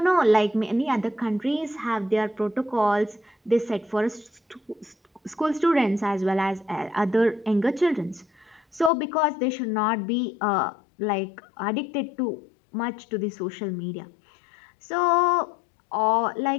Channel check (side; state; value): right; drops out; at 8.9 s